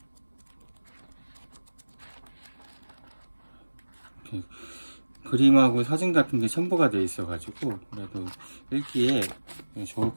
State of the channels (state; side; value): inverted; both; correlation -1.00